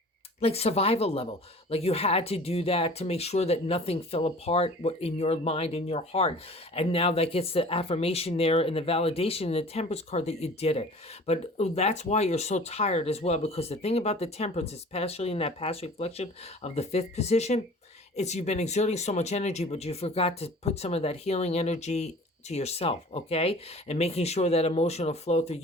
like survival level, like you had to do that to make sure that nothing fell apart in your mind, in your heart. And now that gets the affirmation there and the validation in the temperance card that you did it. But that's why you're so tired as well, because the thing about the temperance, especially in that past reflection of the fifth position, it's you've been exerting so much energy, but you forgot to put some of that healing energy to yourself, okay? And making sure that emotional flow through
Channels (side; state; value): both; normal; correlation 0.44